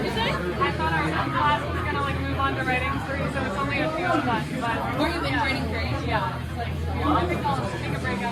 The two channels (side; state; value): both; identical; correlation 1.00